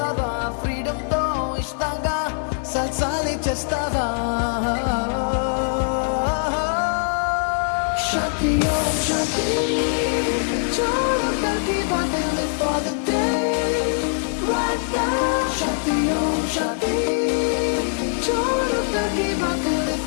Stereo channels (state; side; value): silent; right; 55 dB below the other